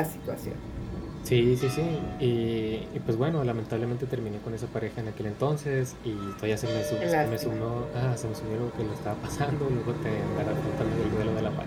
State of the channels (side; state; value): both; identical; correlation 1.00